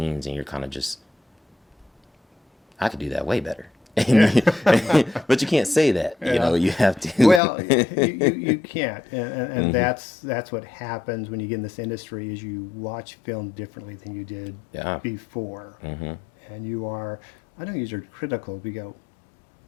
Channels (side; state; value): right; drops out; at 7.4 s